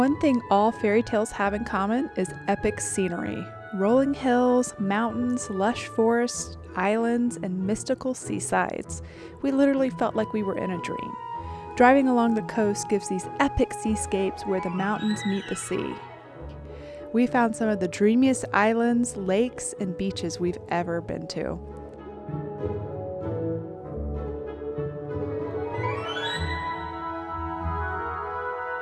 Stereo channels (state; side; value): identical; both; correlation 1.00